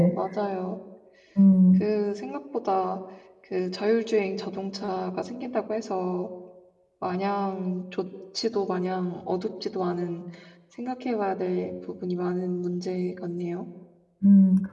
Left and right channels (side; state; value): both; identical; correlation 1.00